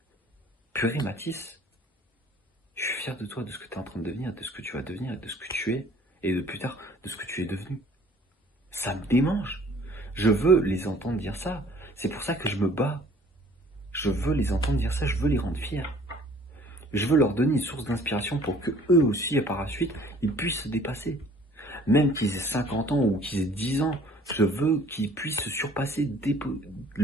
purée, Mathis, je suis fier de toi, de ce que tu es en train de devenir, de ce que tu vas devenir, de ce que tu es, et de plus tard, de ce que tu es devenu. Ça me démange. Je veux les entendre dire ça. C'est pour ça que je me bats. Je veux les entendre dire ça, je veux les rendre fiers. Je veux leur donner une source d'inspiration pour que eux aussi, et par la suite, ils puissent se dépasser. Même qu'ils aient 50 ans ou qu'ils aient 10 ans, je veux qu'ils puissent se surpasser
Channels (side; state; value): both; normal; correlation 0.54